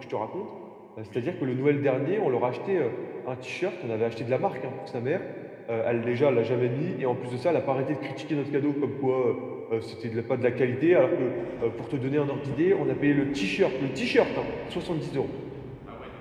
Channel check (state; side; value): identical; both; correlation 1.00